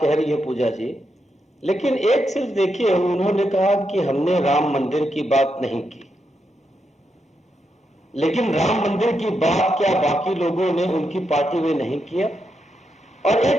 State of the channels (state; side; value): normal; both; correlation 0.83